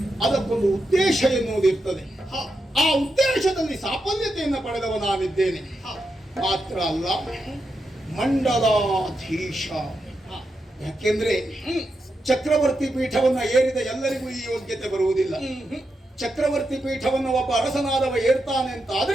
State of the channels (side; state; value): both; normal; correlation 0.86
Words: ಅದಕ್ಕೊಂದು ಉದ್ದೇಶ ಎನ್ನುವುದಿರ್ತದೆ. ಆ ಉದ್ದೇಶದಲ್ಲಿ ಸಾಫಲ್ಯತೆಯನ್ನು ಪಡೆದವ ನಾನಿದ್ದೇನೆ. ಮಾತ್ರ ಅಲ್ಲ, ಮಂಡಲಾಧೀಶ. ಯಾಕೆಂದ್ರೆ ಚಕ್ರವರ್ತಿ ಪೀಠವನ್ನ ಏರಿದ ಎಲ್ಲರಿಗೂ ಈ ಯೋಗ್ಯತೆ ಬರುವುದಿಲ್ಲ. ಚಕ್ರವರ್ತಿ ಪೀಠವನ್ನು ಒಬ್ಬ ಅರಸನಾದವ ಏರ್ತಾನೆ ಅಂತ